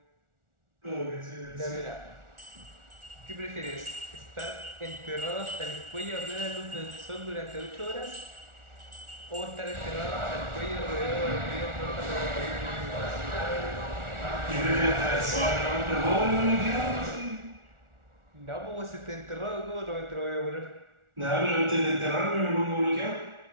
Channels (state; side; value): late; left; 1.4 ms